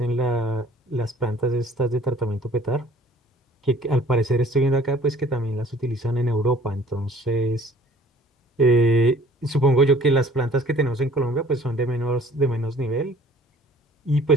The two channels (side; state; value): both; normal; correlation 0.53